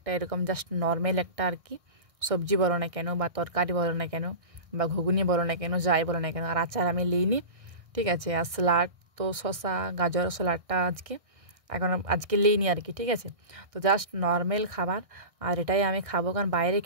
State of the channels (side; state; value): left; late; 1.6 ms